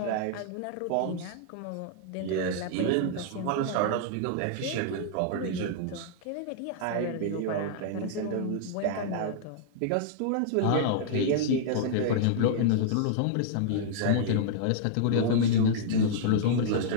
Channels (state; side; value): different; both; correlation -0.01